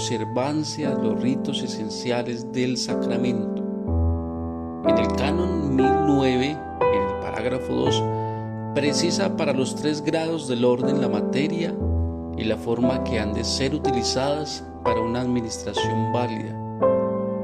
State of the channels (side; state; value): both; identical; correlation 1.00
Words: de los ritos esenciales del sacramento. En el Canon 1009, en el parágrafo 2, precisa para los 3 grados del orden la materia y la forma que han de ser utilizadas para una administración válida: